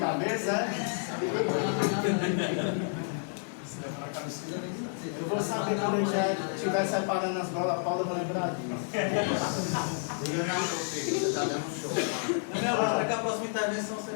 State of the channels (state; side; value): silent; right; digital silence